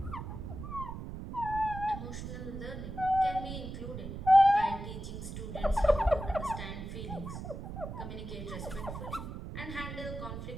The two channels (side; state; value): right; noise; rumble, 8 dB below the sound